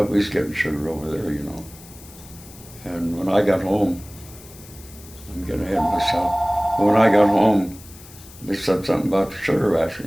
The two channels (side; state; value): left; noise; hiss, 20 dB below the sound